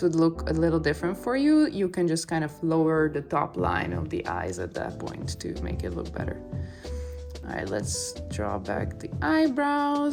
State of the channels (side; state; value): both; identical; correlation 1.00